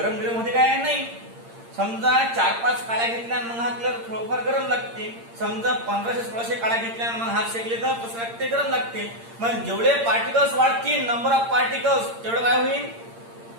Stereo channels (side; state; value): left; late; 8.7 ms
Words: होते काय? नाही. समजा 4-5 काळ्या घेतल्या मग हात थोडंफार गरम लागते. समजा 1500-1600 काळ्या घेतल्या मग हात शेकले तर कसं लागते? गरम लागते. मग जेवढे पार्टिकल्स वाढतील, नंबर ऑफ पार्टिकल्स, तेवढं काय होईल?